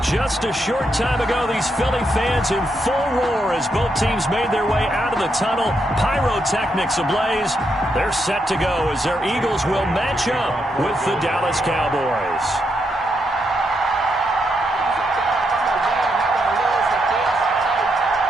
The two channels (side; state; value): both; normal; correlation 0.80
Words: Just a short time ago, these Philly fans in full roar as both teams made their way out of the tunnel. Pyrotechnics ablaze. They're set to go as their Eagles will match up with the Dallas Cowboys.